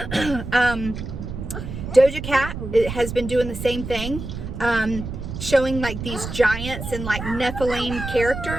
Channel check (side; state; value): right; noise; rumble, 7 dB below the sound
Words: Doja Cat has been doing the same thing, showing like these giants and like Nephilim